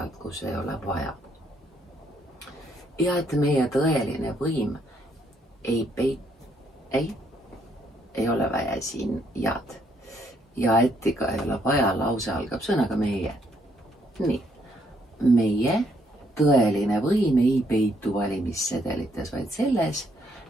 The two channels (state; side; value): normal; both; correlation 0.71